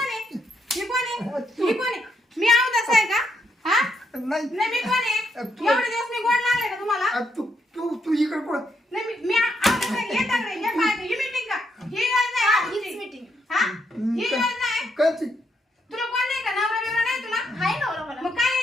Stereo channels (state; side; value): normal; both; correlation 0.77